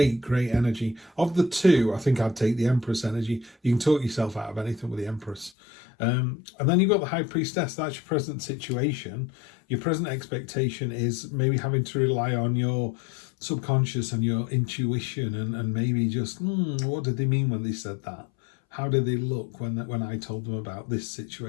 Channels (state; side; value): drops out; right; at 5.5 s